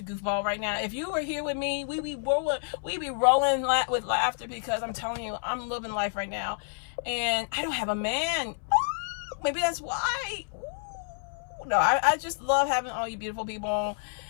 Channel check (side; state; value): right; silent; 59 dB below the other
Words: goofball right now. If you were here with me, we'd be rolling with laughter, because I'm telling you, I'm living life right now. And I don't have a man. Ooh, maybe that's why. Ooh. No, I just love having all you beautiful people